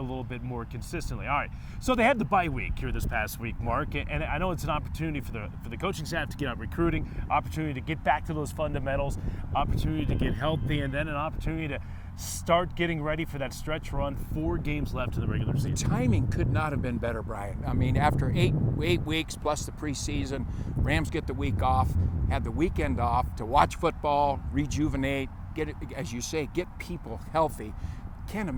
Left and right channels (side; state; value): both; identical; correlation 1.00